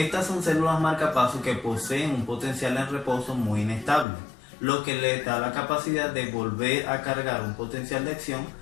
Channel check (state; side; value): drops out; right; at 4.0 s